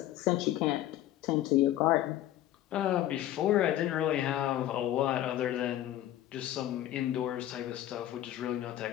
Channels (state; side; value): quieter; right; 13.2 dB